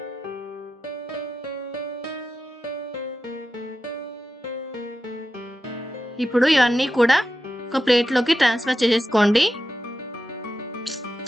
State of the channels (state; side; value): normal; both; correlation 0.90